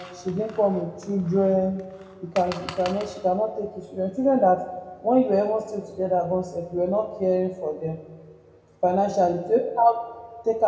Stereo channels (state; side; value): identical; both; correlation 1.00